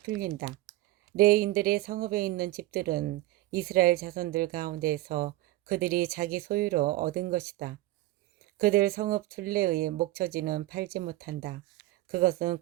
레인들의 성읍에 있는 집들은 이스라엘 자손들 가운데에서 그들이 자기 소유로 얻은 것이다. 그들 성읍 둘레의 목처지는 팔지 못한다. 그것은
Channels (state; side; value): quieter; left; 17.5 dB